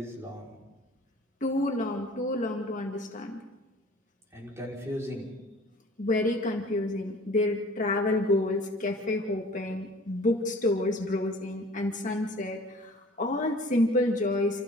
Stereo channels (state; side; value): normal; both; correlation 0.48